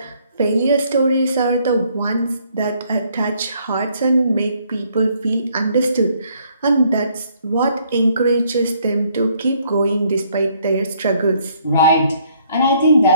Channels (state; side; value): inverted; both; correlation -0.66